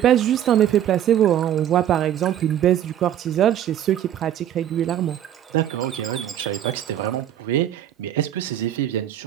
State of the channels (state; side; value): quieter; left; 11.0 dB